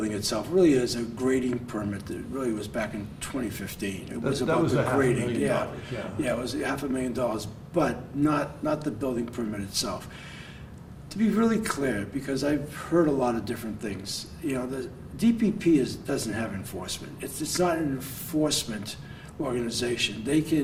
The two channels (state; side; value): identical; both; correlation 1.00